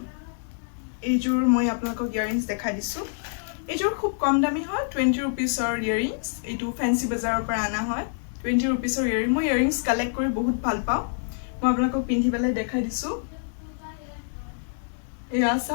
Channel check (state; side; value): silent; right; digital silence